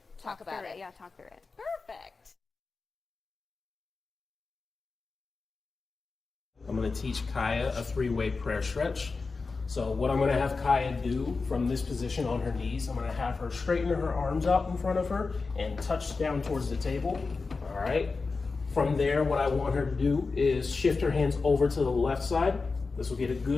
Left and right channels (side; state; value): right; quieter; 4.2 dB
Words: Talk about through it. Yeah, talk through it. Perfect. I'm going to teach Kaya a 3-way prayer stretch. So what I'm going to have Kaya do from this position on her knees, I'm going to have her straighten her arms out in front of her and touch down towards the table. All right. From there, what I want her to do is shift her hands over to the left side. This will get a